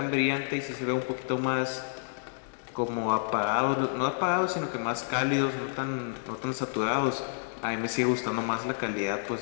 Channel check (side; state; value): right; silent; digital silence